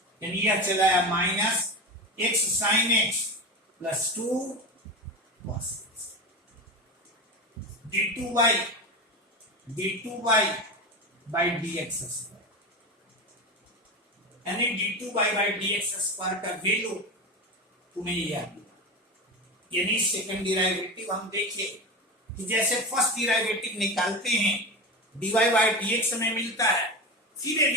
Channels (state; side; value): normal; both; correlation 0.23